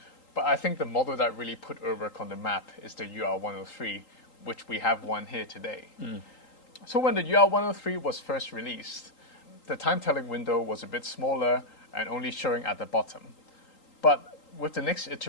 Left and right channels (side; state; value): right; late; 3.8 ms